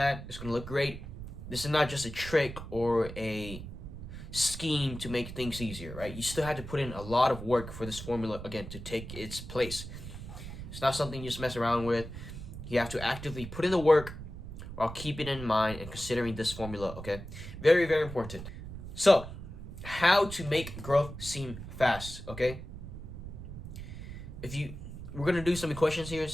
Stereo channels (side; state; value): right; noise; rumble, 10 dB below the sound